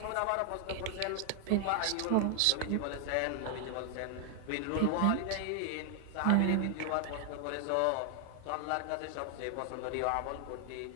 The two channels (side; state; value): both; different; correlation 0.00